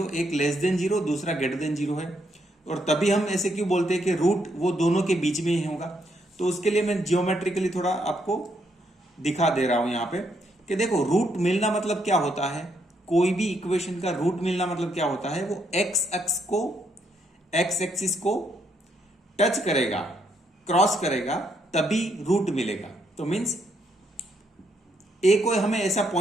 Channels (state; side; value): normal; both; correlation 0.75